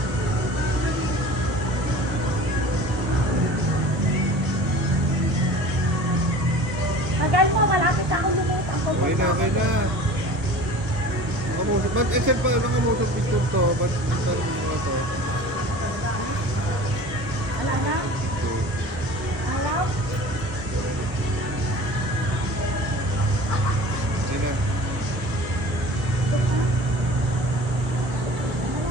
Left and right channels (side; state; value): left; late; 1.2 ms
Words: Magal mo, malapit ako lumit. Okay na. Nakamusot. Ba't SM pa? Nakamusot dito to? Ba't saan mo na ito? Wala na? Wala? Okay na.